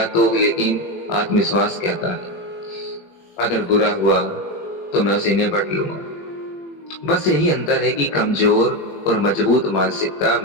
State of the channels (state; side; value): late; right; 21 ms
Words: तो, लेकिन आत्मविश्वास कहता है अगर बुरा हुआ तो मैं उसे निपट लूंगा। बस यही अंतर है कि कमजोर और मजबूत मानसिकता